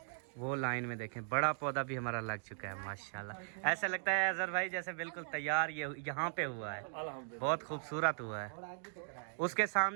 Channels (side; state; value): left; silent; digital silence